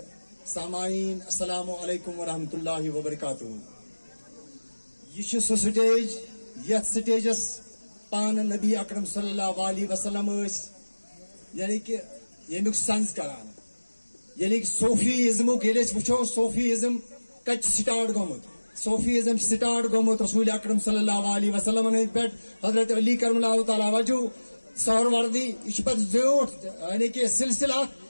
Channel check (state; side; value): inverted; both; correlation -1.00